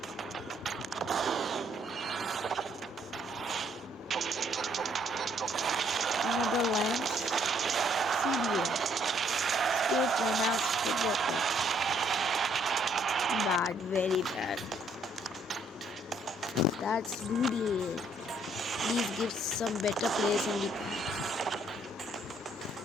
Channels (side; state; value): both; normal; correlation 0.67